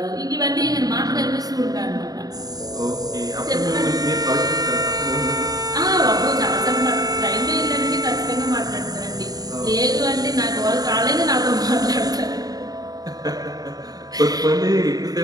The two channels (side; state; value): left; late; 0.18 ms